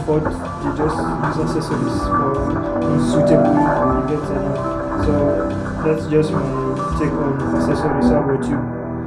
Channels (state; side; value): identical; both; correlation 1.00